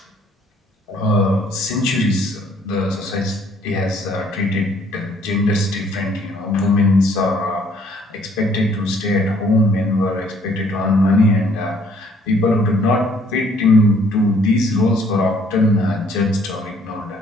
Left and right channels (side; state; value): both; normal; correlation 0.62